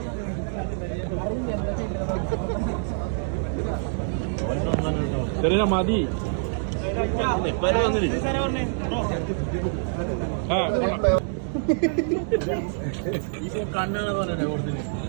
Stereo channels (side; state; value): left; silent; digital silence